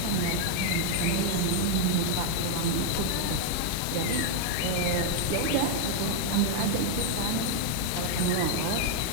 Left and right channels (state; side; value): different; both; correlation 0.00